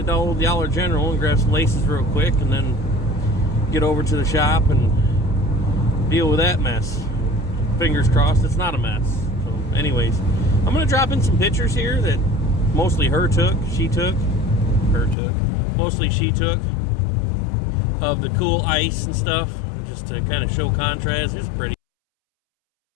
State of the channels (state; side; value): drops out; right; at 15.2 s